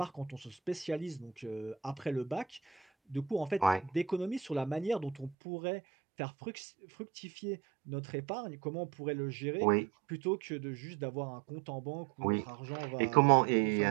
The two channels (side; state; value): left; drops out; at 5.4 s